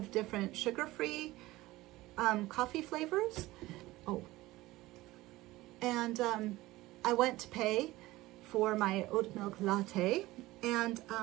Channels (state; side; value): quieter; left; 18.3 dB